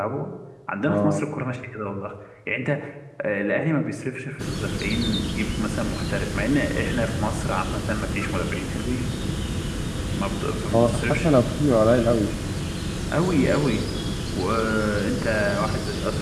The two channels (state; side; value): identical; both; correlation 1.00